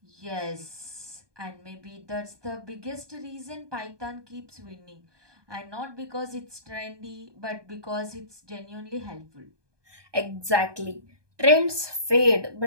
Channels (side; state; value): left; late; 1.2 ms